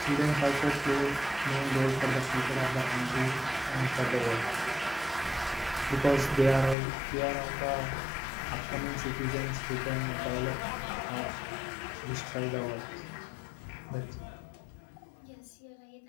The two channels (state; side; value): drops out; right; at 6.8 s